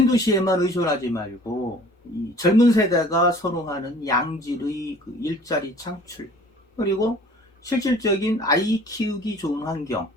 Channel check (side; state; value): both; normal; correlation 0.49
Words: 의존하지 말고, 이 젊은 세대가 선호하는 양질의 그 일자리 창출, 그리고 실질적인 아이 키우기 좋은 환경,